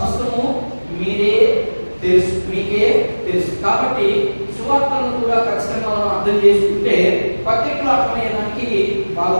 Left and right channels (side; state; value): both; inverted; correlation -1.00